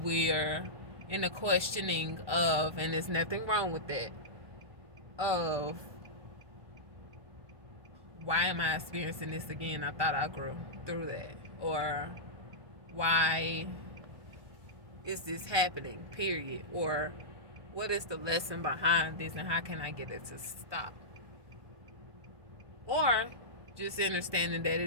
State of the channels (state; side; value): late; left; 1.2 ms